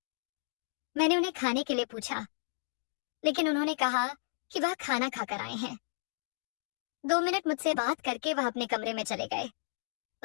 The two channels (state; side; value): silent; right; digital silence